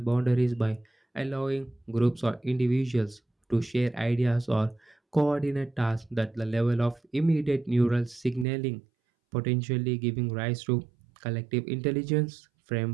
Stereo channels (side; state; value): left; drops out; at 8.5 s